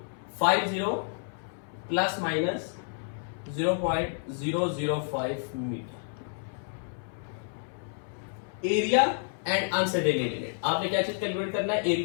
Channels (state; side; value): silent; right; 58 dB below the other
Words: plus minus 0.005 metre. Area and uncertainty, आपने क्या चीज कैलकुलेट करना है,